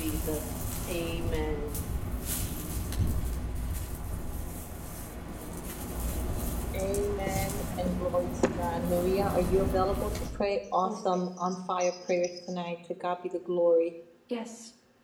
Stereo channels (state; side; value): identical; both; correlation 1.00